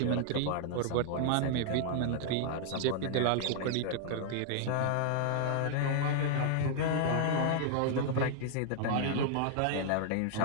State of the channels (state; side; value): different; both; correlation 0.00